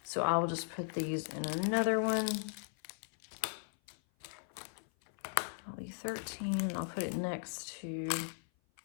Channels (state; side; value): silent; right; 53 dB below the other